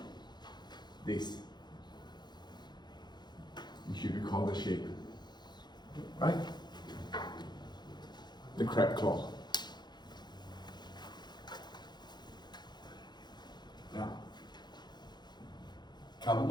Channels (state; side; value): late; right; 0.21 ms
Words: this. You should recall the shape, right? The crab claw. Now, couple